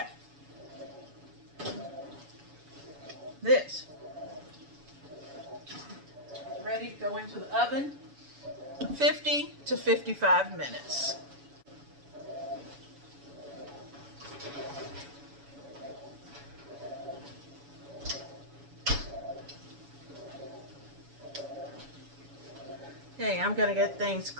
This is ready to go into the oven. 50 to 55 minutes. Okay, I'm going to get things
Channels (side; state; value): left; late; 7.1 ms